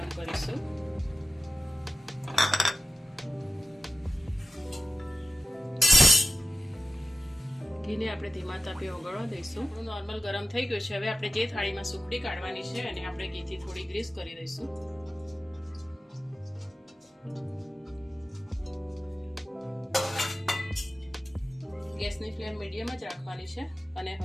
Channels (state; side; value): normal; both; correlation 0.94